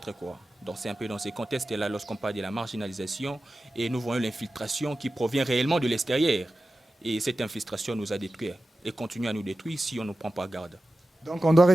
quoi. Donc c'est un peu dans ces contextes-là lorsqu'on parle de la marginalisation et nous voyons l'infiltration qui provient réellement de l'extérieur. Et cette infiltration nous a détruits et continue à nous détruire si on ne prend pas garde. Donc on doit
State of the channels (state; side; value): normal; both; correlation 0.94